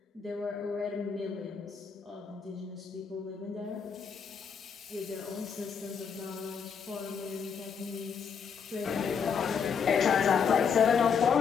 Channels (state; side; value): quieter; right; 6.6 dB